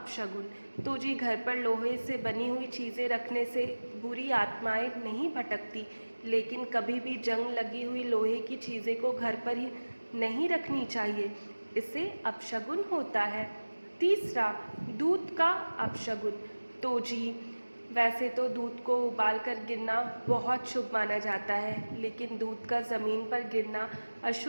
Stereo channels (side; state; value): both; inverted; correlation -1.00